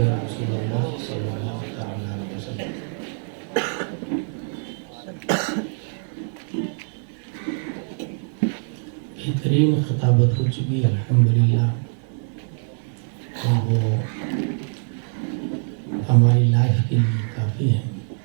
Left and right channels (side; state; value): left; silent; 60 dB below the other